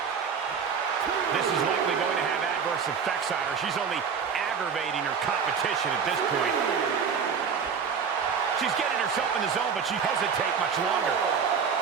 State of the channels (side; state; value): left; quieter; 6.4 dB